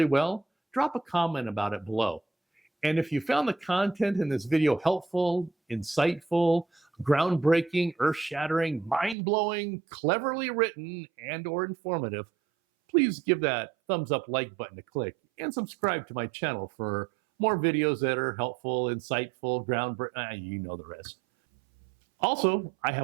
well, drop a comment about it below. And if you found the content in this video helpful, insightful, groundbreaking, earth-shattering, mind-blowing, cleverly written, and/or informative, please give that thumbs up like button a click and subscribe to my channel for more videos that are helpful, insightful, groundbreaking, you know the rest. Also, I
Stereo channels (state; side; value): drops out; left; at 9.2 s